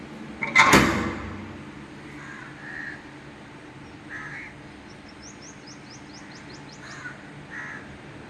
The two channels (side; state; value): both; identical; correlation 1.00